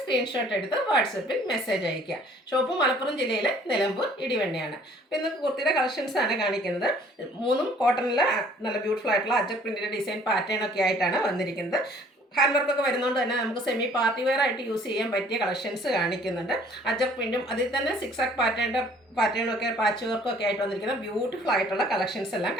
സ്ക്രീൻഷോട്ട് എടുത്ത് വാട്സപ്പിൽ മെസ്സേജ് അയയ്ക്കുക. ഷോപ്പ് മലപ്പുറം ജില്ലയിലെ നിലമ്പൂർ ഇടിവെണ്ണയാണ്. അപ്പോൾ ഇന്ന് കുർത്തിയുടെ കളക്ഷൻസ് ആണ് കാണിക്കുന്നത്. 3ഉം കോട്ടണിലെ നല്ല ബ്യൂട്ടിഫുൾ ആയിട്ടുള്ള അജക് പ്രിന്റിന്റെ ഡിസൈൻ പാറ്റേൺ ഒക്കെ ആയിട്ടാണ് വന്നിരിക്കുന്നത്. ഹാൻഡ് വർക്കൊക്കെ വരുന്നതുകൊണ്ട് തന്നെ നമുക്ക് സെമി പാർട്ടി വെയർ ആയിട്ട് യൂസ് ചെയ്യാൻ പറ്റിയ കളക്ഷൻസ് കാണിക്കുന്നുണ്ട്. അജക് പ്രിന്റും അതിൽ തന്നെ സിക്സാക് പാറ്റേണൊക്കെ പാച്ച് വർക്കും ഒക്കെ ആയിട്ട് വന്നിരിക്കുന്ന ബ്യൂട്ടിഫുൾ ആയിട്ടുള്ള കളക്ഷൻസ് എല്ലാം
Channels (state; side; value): normal; both; correlation 0.56